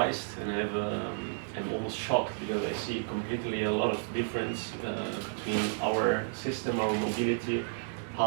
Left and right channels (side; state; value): left; silent; digital silence